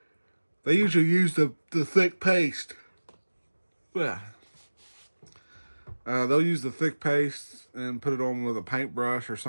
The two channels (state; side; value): inverted; both; correlation -1.00